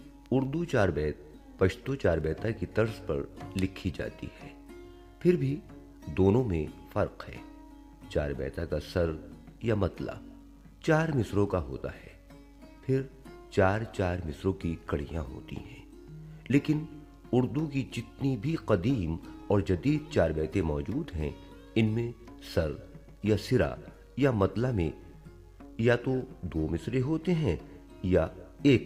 उर्दू 4 बैत पश्तो 4 बैता की तर्ज पर लिखी जाती है, फिर भी दोनों में फर्क है। 4 बैता का सर या मतला 4 मिसरों का होता है, फिर 4-4 मिसरों की कड़ियां होती हैं। लेकिन उर्दू की जितनी भी कदीम और जदीद चार बैतें मौजूद हैं, इनमें सर या सिरा या मतला में या तो 2 मिसरे होते हैं या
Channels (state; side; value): identical; both; correlation 1.00